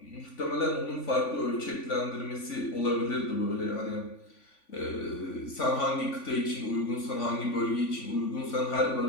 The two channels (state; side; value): late; right; 3.5 ms